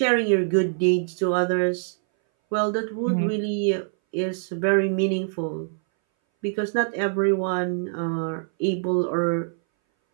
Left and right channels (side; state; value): left; silent; 60 dB below the other